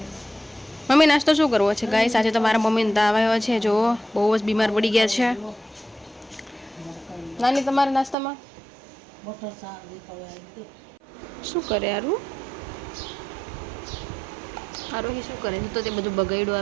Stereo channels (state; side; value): drops out; left; at 8.2 s